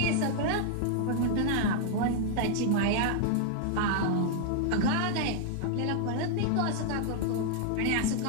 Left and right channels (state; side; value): different; both; correlation 0.00